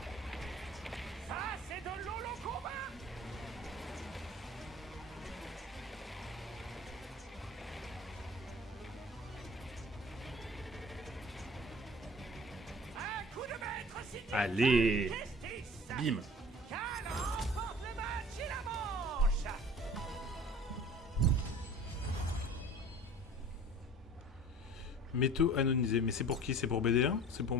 Ça, c'est de l'holo combat! Un coup de maître signé Allez! Justice! Bim! Cal remporte le match et la manche! Métaux anonisés. Mais c'est pour qui? C'est pour BD1? C'est pour,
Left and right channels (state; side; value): normal; both; correlation 0.45